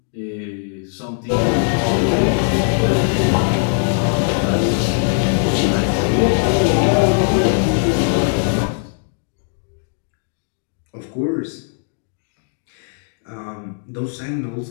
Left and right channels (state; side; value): silent; right; digital silence